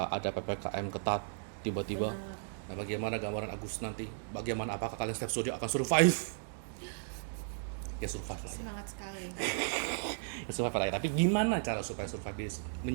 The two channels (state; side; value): silent; left; digital silence